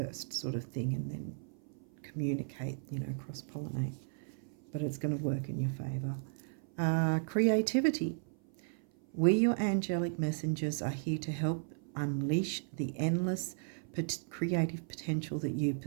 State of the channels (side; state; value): left; silent; 54 dB below the other